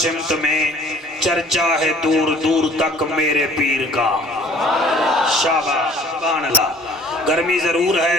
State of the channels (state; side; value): normal; both; correlation 0.53